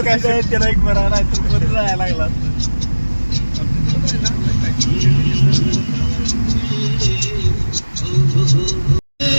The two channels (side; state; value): both; inverted; correlation -1.00